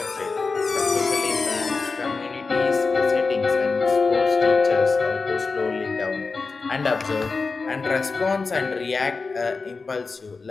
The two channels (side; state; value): right; quieter; 4.2 dB